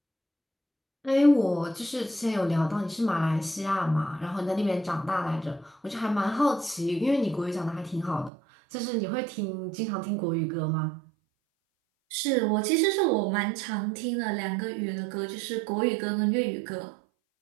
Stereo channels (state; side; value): drops out; left; at 8.3 s